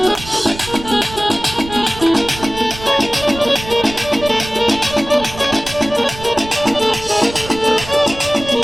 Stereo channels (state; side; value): noise; right; rumble, 13 dB below the sound